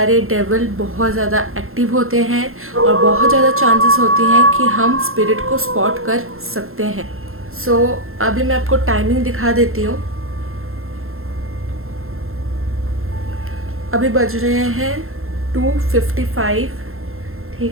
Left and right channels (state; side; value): late; left; 0.61 ms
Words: डेविल बहुत ज़्यादा एक्टिव होते हैं और बहुत ज़्यादा चांसेस होती हैं कि हम स्पिरिट को स्पॉट कर सकते हैं। सो अभी मैं आपको टाइमिंग दिखा देती हूँ। अभी बज रहे हैं 2:55,